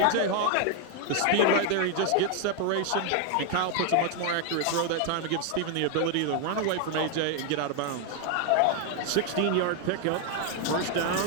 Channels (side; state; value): both; different; correlation 0.00